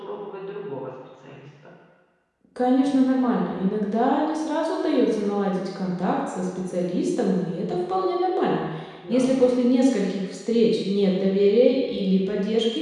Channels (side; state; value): both; identical; correlation 1.00